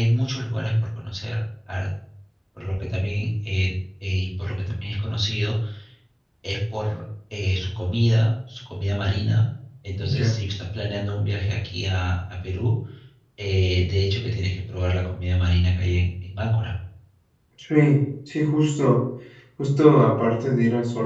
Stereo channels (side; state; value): both; identical; correlation 1.00